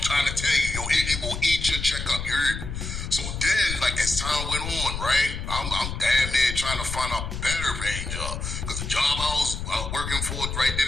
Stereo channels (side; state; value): left; noise; rumble, 5 dB below the sound